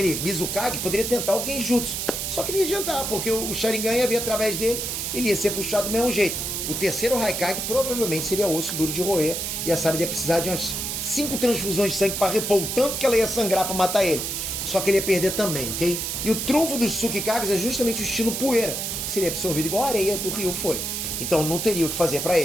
Mizukage, poderia tentar o Genjutsu. Só que não ia adiantar, porque o Sharingan ia vir através dele, ele ia ser puxado do mesmo jeito. O terceiro Raikage provavelmente seria osso duro de roer e a Sarada ia precisar de umas 5 transfusões de sangue para repor o tanto que ela ia sangrar para matar ele. Só que ele ia perder também, ok? E o trunfo dos Tsukikages é justamente o estilo poeira, que seria absorvido igual a areia do Ryu foi. Então não teria o que fazer para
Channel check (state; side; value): noise; right; hiss, 3 dB below the sound